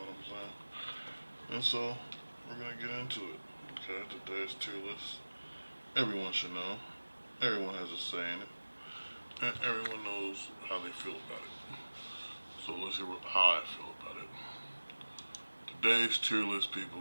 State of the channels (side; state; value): both; inverted; correlation -1.00